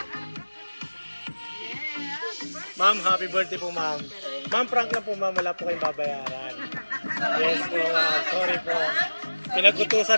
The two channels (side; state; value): both; inverted; correlation -1.00